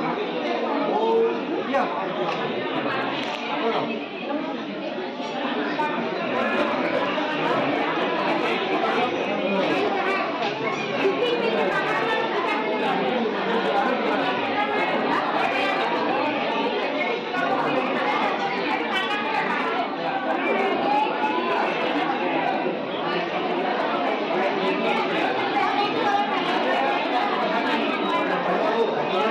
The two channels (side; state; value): both; identical; correlation 1.00